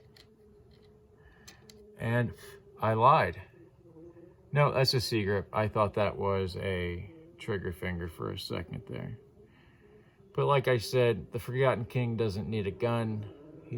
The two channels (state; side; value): identical; both; correlation 1.00